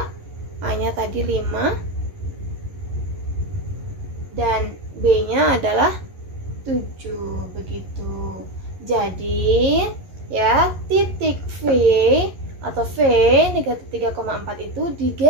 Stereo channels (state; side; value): late; left; 11 ms